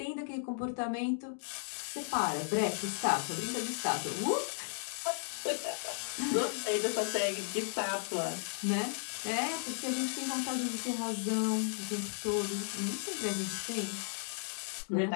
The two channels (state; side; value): silent; right; digital silence